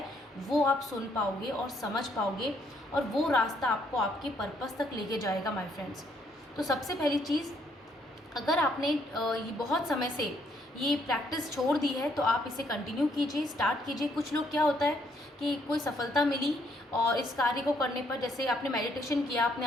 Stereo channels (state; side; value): normal; both; correlation 0.70